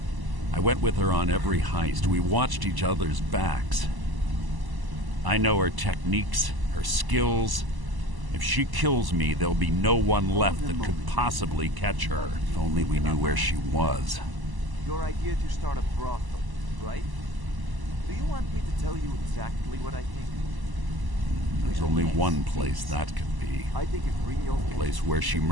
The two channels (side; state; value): left; late; 1.0 ms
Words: I went with her on every heist. We watched each other's backs. I know her techniques, her skills. If she kills me, there'll be no one left that could possibly catch her. If only we knew where she was. Your idea to start a brothel, right? Do you want me to tell you exactly what I think? There's only one place that could be. I think if Ringo... The place where she